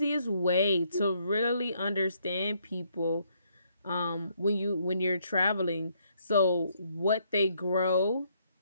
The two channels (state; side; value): inverted; both; correlation -0.71